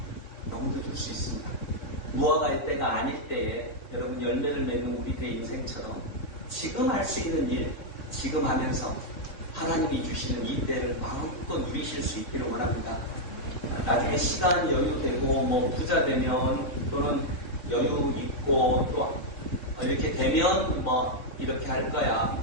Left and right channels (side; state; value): right; late; 3.6 ms